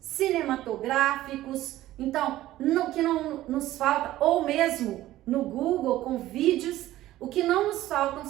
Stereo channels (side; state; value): left; quieter; 15.0 dB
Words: Então, o que não nos falta, ou mesmo no Google com vídeos, o que não nos faltam